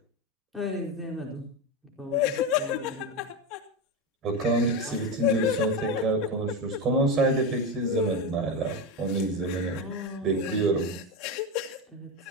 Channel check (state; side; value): normal; both; correlation 0.15